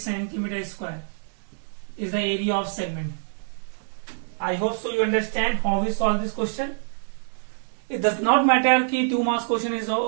square is the area of segment. I hope so you understand how we solve this question. It does not matter ki 2 marks question is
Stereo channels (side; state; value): left; silent; digital silence